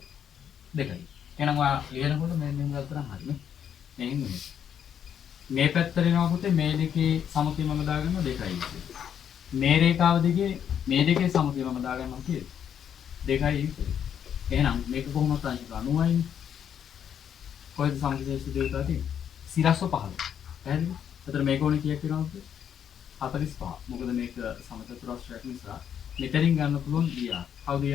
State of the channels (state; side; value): quieter; right; 8.7 dB